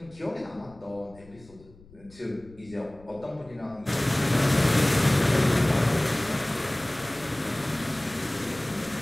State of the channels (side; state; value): left; noise; rumble, 24 dB below the sound